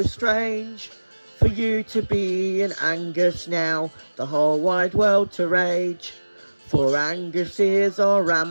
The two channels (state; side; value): inverted; both; correlation -1.00